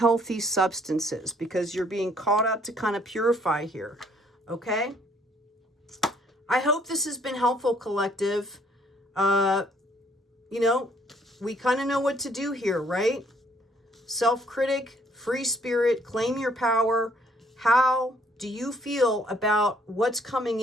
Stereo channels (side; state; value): both; normal; correlation 0.64